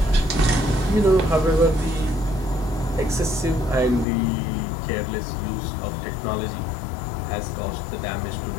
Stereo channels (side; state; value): right; drops out; at 4.0 s